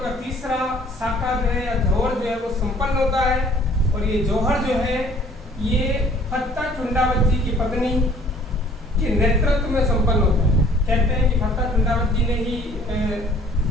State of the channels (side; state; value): both; normal; correlation 0.55